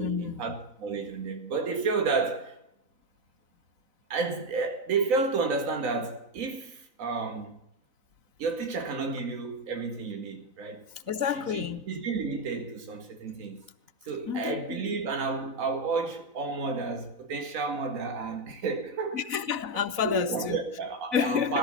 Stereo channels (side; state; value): left; late; 4.0 ms